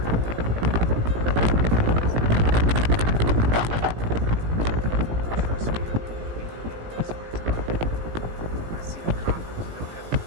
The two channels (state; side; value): late; left; 18 ms